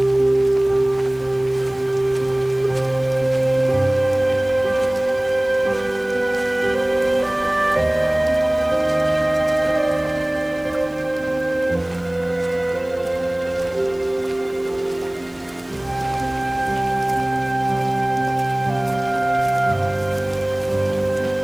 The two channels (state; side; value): noise; left; hiss, 29 dB below the sound